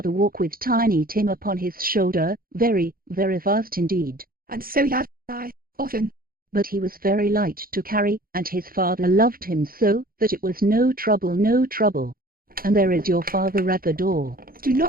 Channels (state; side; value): late; left; 0.42 ms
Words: walk with Tiny Tim upon his shoulder, very, very fast indeed. And so have I, often. But he was very light to carry, and his father loved him so, that it was no trouble. And there is your father at the door. Do